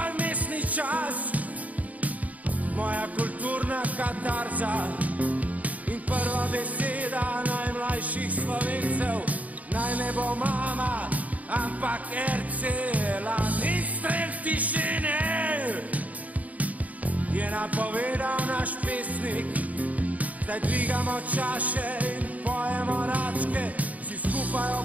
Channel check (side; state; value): left; late; 0.072 ms